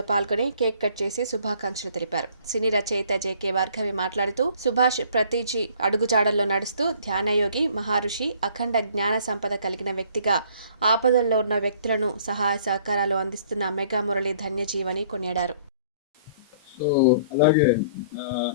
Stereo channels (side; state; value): both; inverted; correlation -0.57